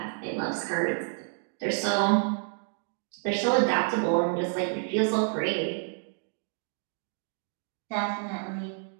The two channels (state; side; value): silent; left; 58 dB below the other